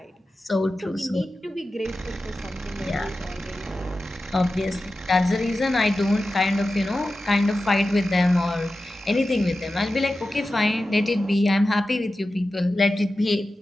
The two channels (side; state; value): both; normal; correlation 0.93